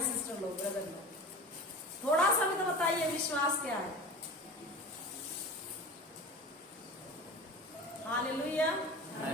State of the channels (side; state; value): both; normal; correlation 0.34